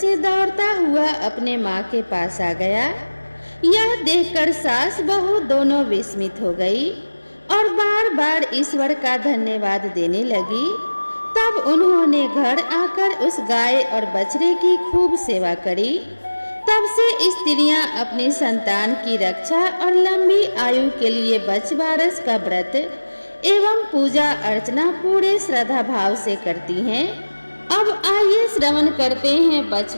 दौड़ता हुआ अपने माँ के पास आ गया। यह देखकर सास बहू दोनों विस्मित हो गई और बार बार ईश्वर का धन्यवाद देने लगी। तब उन्होंने घर आकर उस गाय और बछड़े की खूब सेवा करी। तब से स्त्रियां अपनी संतान की रक्षा और लंबी आयु के लिए बछबारस का व्रत एवं पूजा अर्चना पूरे श्रद्धा भाव से करती हैं। अब आइए श्रवण करते हैं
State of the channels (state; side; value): inverted; both; correlation -1.00